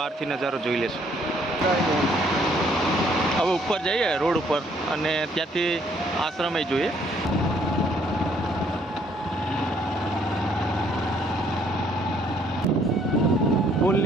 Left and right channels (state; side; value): normal; both; correlation 0.65